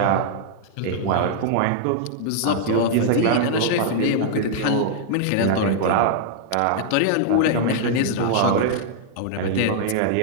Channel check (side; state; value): both; different; correlation -0.01